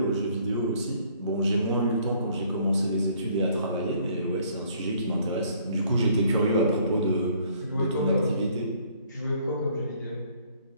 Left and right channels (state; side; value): inverted; both; correlation -0.61